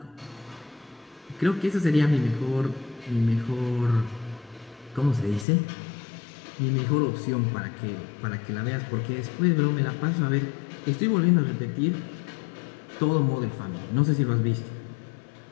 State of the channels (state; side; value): drops out; right; at 5.5 s